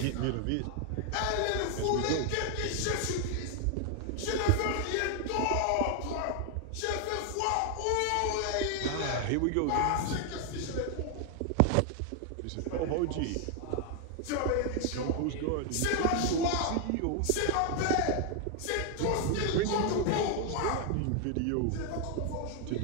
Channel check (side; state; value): both; different; correlation 0.00